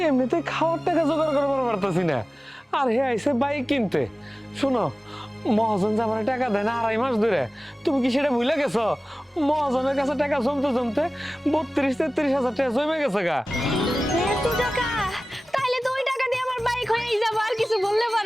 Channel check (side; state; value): both; normal; correlation 0.97